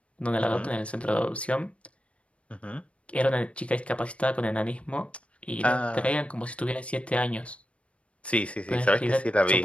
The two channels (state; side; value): late; right; 0.062 ms